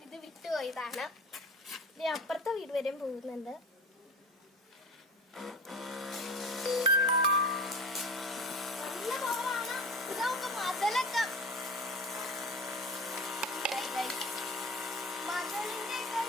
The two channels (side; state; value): both; normal; correlation 0.34